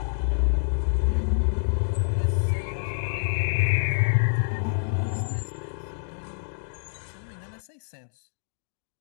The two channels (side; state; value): right; silent; digital silence